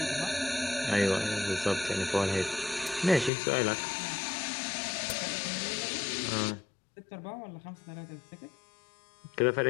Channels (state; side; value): drops out; right; at 3.3 s